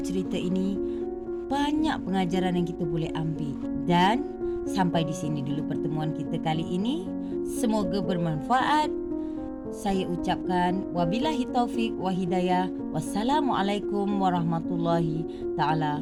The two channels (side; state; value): both; identical; correlation 1.00